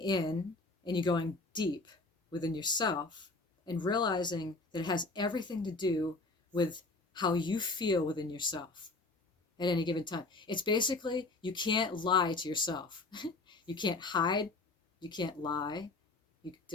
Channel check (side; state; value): right; quieter; 3.4 dB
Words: and you're going deep within yourself, and realizing that it has everything to do with how you feel within yourself. at any given time. It's basically, you can't lie to yourself. You can't hide. You can't lie.